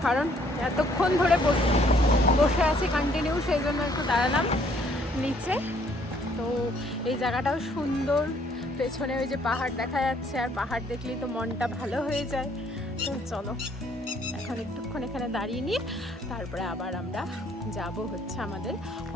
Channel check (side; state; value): both; normal; correlation 0.64